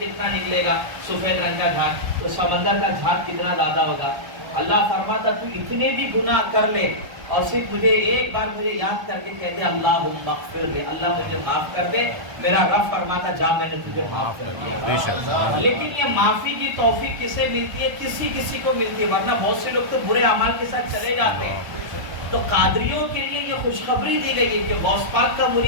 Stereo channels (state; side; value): late; left; 1.3 ms